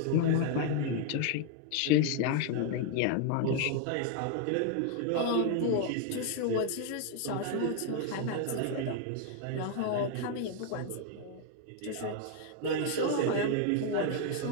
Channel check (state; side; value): different; both; correlation 0.00